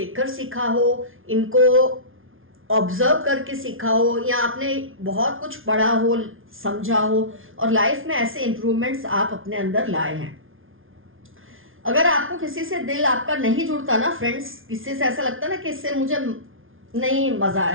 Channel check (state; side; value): late; left; 0.59 ms